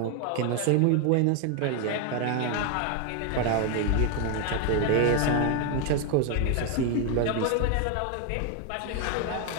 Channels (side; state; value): both; different; correlation 0.01